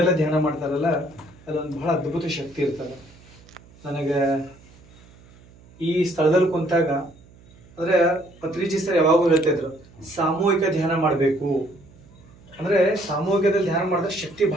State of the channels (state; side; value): noise; right; hum, 25 dB below the sound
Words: ಧ್ಯಾನ ಮಾಡ್ತಾರಲ್ಲ ಅಲ್ಲೊಂದು ಬಹಳ ಅದ್ಭುತ ಶಕ್ತಿ ಇರ್ತದೆ. ನನಗೆ ಈ ಸ್ಥಳದಲ್ಲಿ ಕುಂತಾಗ ಅಂದರೆ ಪತ್ರಿಜಿ ಸರ್ ಯಾವಾಗೂ ಹೇಳ್ತಾ ಇದ್ರು, ಸಾಮೂಹಿಕ ಧ್ಯಾನ ಮಾಡಬೇಕು. ಅಂದರೆ ಸಾಮೂಹಿಕದಲ್ಲಿ ಧ್ಯಾನ ಮಾಡಿದ್ರೆ ಶಕ್ತಿ